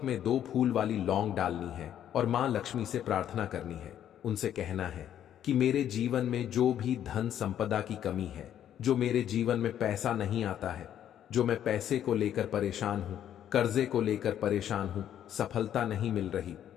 में 2 फूल वाली लौंग डालनी है और मां लक्ष्मी से प्रार्थना करनी है। उनसे कहना है कि मेरे जीवन में जो भी धन संपदा की कमी है, जो मेरे जीवन में पैसा नहीं आता है, जो मैं पैसे को लेकर परेशान हूं, कर्जे को लेकर परेशान हूं, सफलता नहीं मिल रही,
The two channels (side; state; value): right; quieter; 10.4 dB